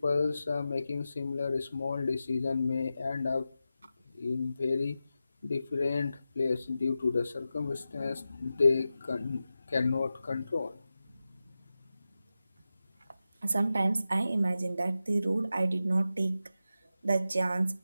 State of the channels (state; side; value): inverted; both; correlation -0.92